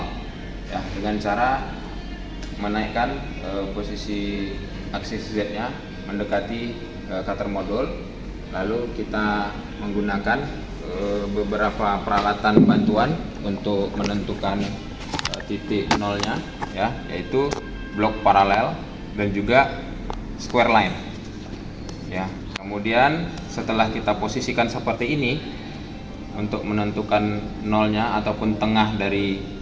ya, dengan cara menaikkan posisi aksis Z-nya mendekati cutter modul. Lalu kita menggunakan beberapa peralatan bantuan untuk menentukan titik nolnya ya, yaitu blok paralel dan juga square line ya. Kemudian setelah kita posisikan seperti ini, untuk menentukan nolnya ataupun tengah dari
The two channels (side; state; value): both; identical; correlation 1.00